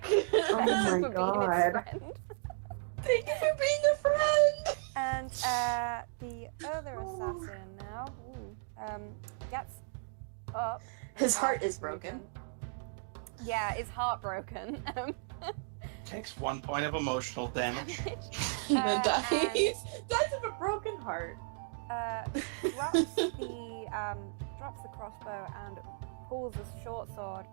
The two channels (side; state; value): left; silent; digital silence